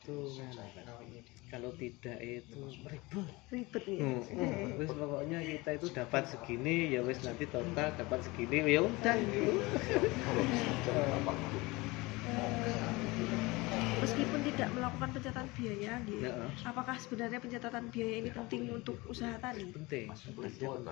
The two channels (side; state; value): right; quieter; 23.0 dB